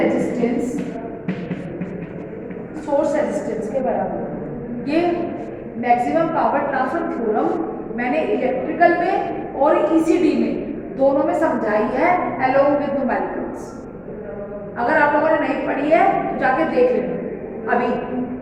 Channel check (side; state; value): both; identical; correlation 1.00